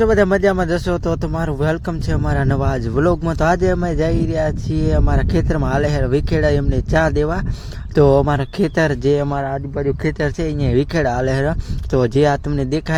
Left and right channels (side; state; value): both; identical; correlation 1.00